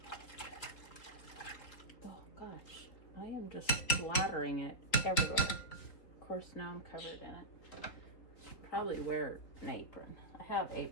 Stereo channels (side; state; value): right; late; 3.8 ms